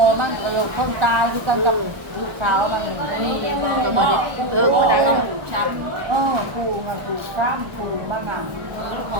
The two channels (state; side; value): late; left; 1.2 ms